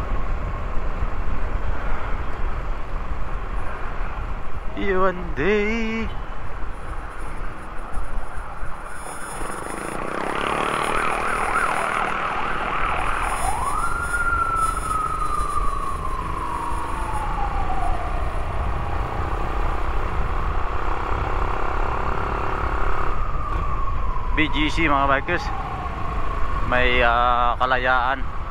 One day. BGC mga bikers, may Kalayaan.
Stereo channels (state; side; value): identical; both; correlation 1.00